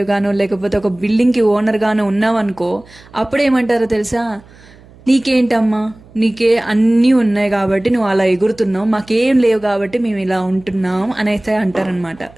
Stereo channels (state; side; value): noise; right; hum, 25 dB below the sound